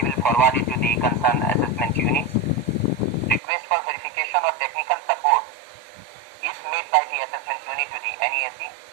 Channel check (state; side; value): drops out; left; at 3.4 s